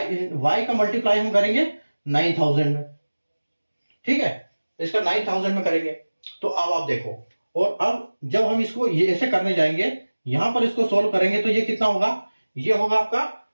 का मल्टीप्लाई हम करेंगे 9000 में, ठीक है, इसका 9000 में करेंगे। तो अब आप देखो, और अब जब हम इसको ये ऐसे करने जाएंगे, यहां पर इसको सोल्व करेंगे तो ये कितना होगा, ये होगा आपका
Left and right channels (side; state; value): both; inverted; correlation -1.00